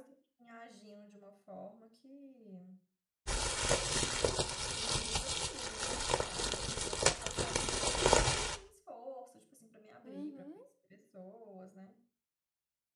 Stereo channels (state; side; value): identical; both; correlation 1.00